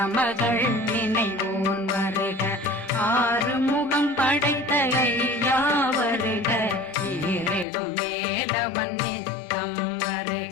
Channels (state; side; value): drops out; right; at 7.7 s